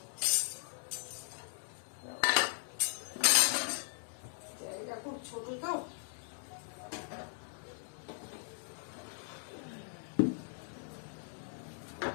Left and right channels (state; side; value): silent; right; digital silence